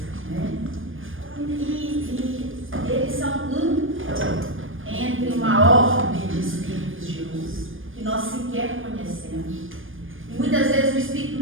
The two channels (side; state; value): left; late; 0.59 ms